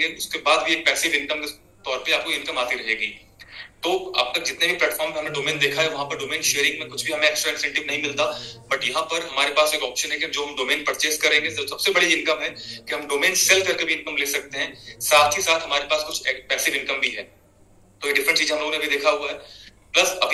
उसके बाद भी एक पैसिव इनकम के तौर पर आपको इनकम आती रहेगी। तो अब तक जितने भी प्लेटफॉर्म पे हमने डोमेन देखा है, वहां पर डोमेन शेयरिंग में कुछ भी हमें एक्स्ट्रा इंसेंटिव नहीं मिलता, बट यहाँ पर हमारे पास एक ऑप्शन है कि जो हम डोमेन परचेज करेंगे, तो सबसे बड़ी इनकम है कि हम डोमेन सेल करके भी इनकम ले सकते हैं, साथ ही साथ हमारे पास कुछ पैसिव इनकम भी है। तो ये डिफरेंट चीज हम लोगों ने भी देखा हुआ है। प्लस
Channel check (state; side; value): identical; both; correlation 1.00